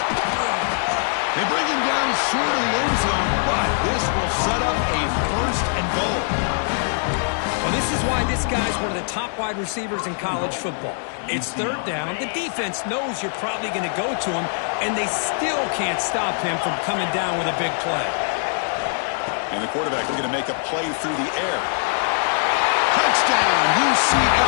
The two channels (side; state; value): right; silent; digital silence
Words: They bring him down short of the end zone, but this will set up a first and goal. Well, this is why this guy's one of the top wide receivers in college football. It's third down. The defense knows you're probably going to go to him, and they still can't stop him from coming down with a big play. And the quarterback looking to make a play through the air. Touchdown,